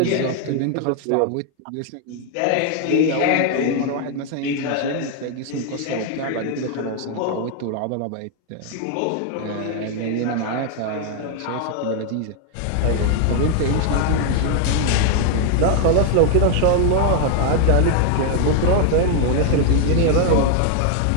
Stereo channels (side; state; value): both; different; correlation 0.00